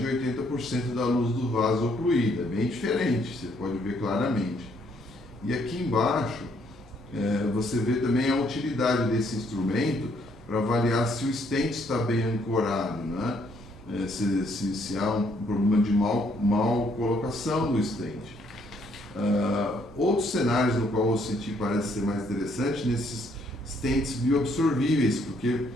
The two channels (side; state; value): both; normal; correlation 0.68